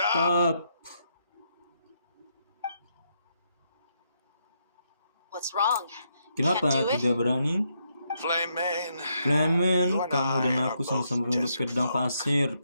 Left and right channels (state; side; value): inverted; both; correlation -0.78